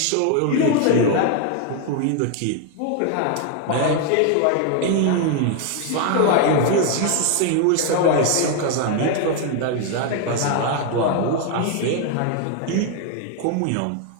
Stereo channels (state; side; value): different; both; correlation 0.00